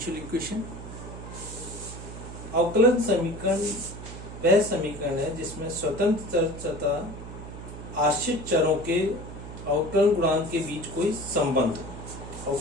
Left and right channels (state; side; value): noise; right; hum, 11 dB below the sound